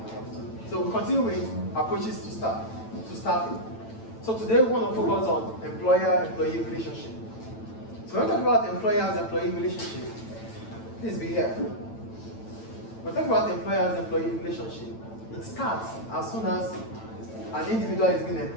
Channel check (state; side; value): late; right; 9.0 ms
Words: So we continue with approaches to staffing. So today we want to focus on employer-employee relationship. So when we talk about employers-employee relationship, please be here. When we talk about employers-employee relationship, it starts as soon as an individual is being